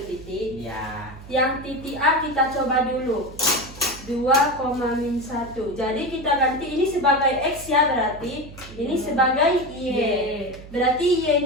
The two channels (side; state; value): right; noise; hum, 17 dB below the sound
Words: titik. Ya. Yang titik A kita coba dulu. 2,-1. Jadi kita ganti ini sebagai X ya, berarti ini sebagai Y. Berarti